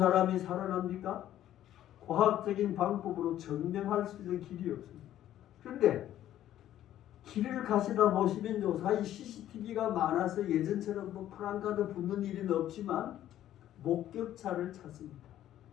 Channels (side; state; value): right; quieter; 12.3 dB